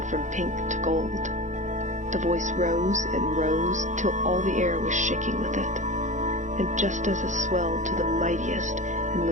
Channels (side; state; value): left; late; 0.35 ms